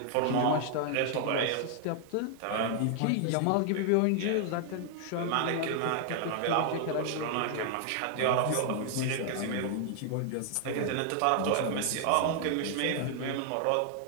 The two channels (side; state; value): both; different; correlation 0.00